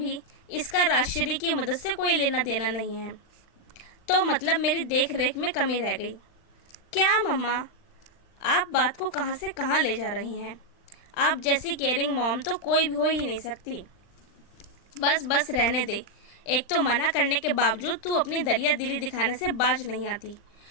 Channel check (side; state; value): right; late; 39 ms